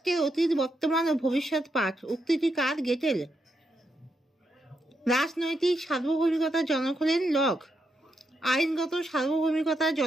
অতীত, বর্তমান ও ভবিষ্যৎ পাঠ। উক্তিটি কার? গেটেল। রাজনৈতিক সার্বভৌমিকতার জনক হলেন লক। আইনগত সার্বভৌমিকতার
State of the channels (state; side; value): normal; both; correlation 0.82